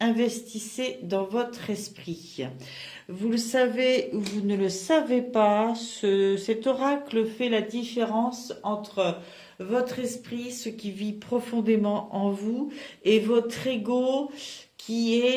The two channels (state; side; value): identical; both; correlation 1.00